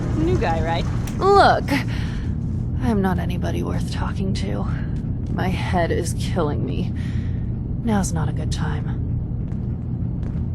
New guy, right? Look, I'm not anybody worth talking to. My head is killing me. Now's not a good time.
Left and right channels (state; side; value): identical; both; correlation 1.00